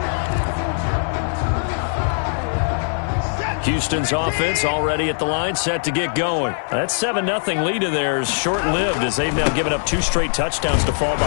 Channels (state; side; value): silent; right; 58 dB below the other